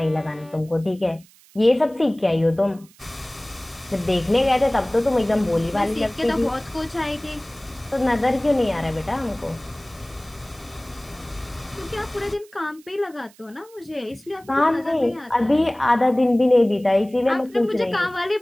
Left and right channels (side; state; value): right; noise; hiss, 27 dB below the sound